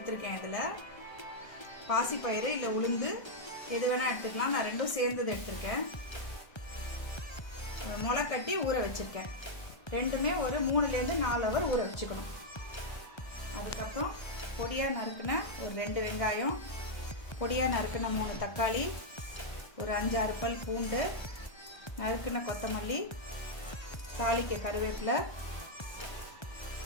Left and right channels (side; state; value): right; late; 1.3 ms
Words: இதில் பாசிப்பயிறு இல்லை உளுந்து எது வேணால் எடுத்துக்கலாம். நான் ரெண்டும் சேர்ந்தது எடுத்திருக்கேன். முளைக்கட்டி ஊற வச்சிருக்கேன். ரெண்டுமே ஒரு 3-4 ஹவர் ஊற வச்சுக்கணும். அதுக்கப்புறம் பொடியாக நறுக்கின ஒரு 2 வெங்காயம், பொடியாக நறுக்கின 3 தக்காளி, ஒரு 5-6 பல் பூண்டு, நறுக்கின கொத்தமல்லி, தாளிக்க கருவேப்பிலை,